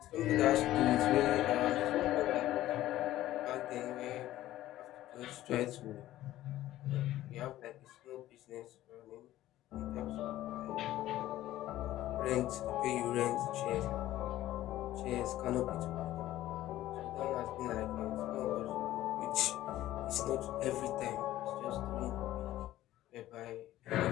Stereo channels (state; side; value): quieter; right; 14.6 dB